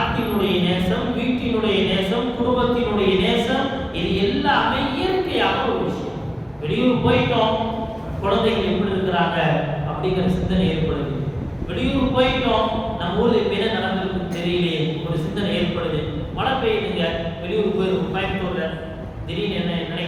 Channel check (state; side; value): identical; both; correlation 1.00